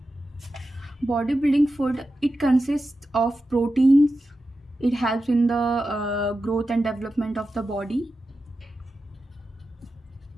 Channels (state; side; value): normal; both; correlation 0.91